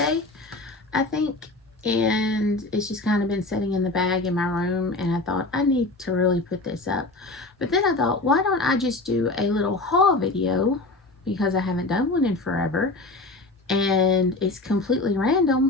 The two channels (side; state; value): right; quieter; 3.0 dB